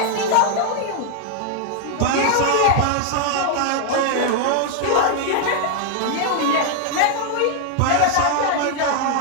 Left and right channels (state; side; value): different; both; correlation 0.00